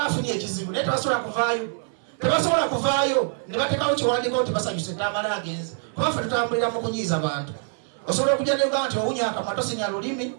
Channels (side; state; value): left; silent; 62 dB below the other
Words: afunye ekizibu naye tebasobola kuvaayo ne bateekawo kiwandiiko nti basanyuse Tamala agenze. Kuba ffe tutambulira mu kunyiiza bantu. Osobola okujja ne Uganda nti owunya akamwa tosinya lulimi